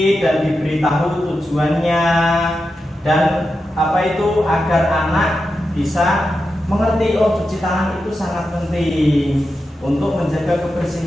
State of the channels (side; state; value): both; normal; correlation 0.89